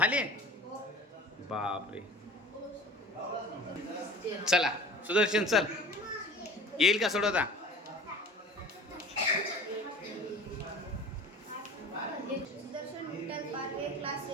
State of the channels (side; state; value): both; normal; correlation 0.41